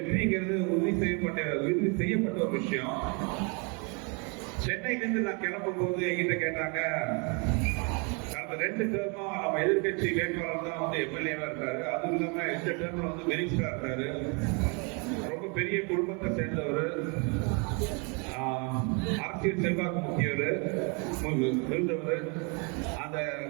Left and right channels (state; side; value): quieter; left; 33.8 dB